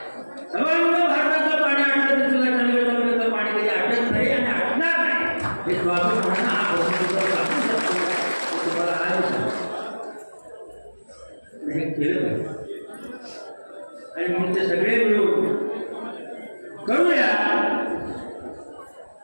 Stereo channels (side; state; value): both; inverted; correlation -1.00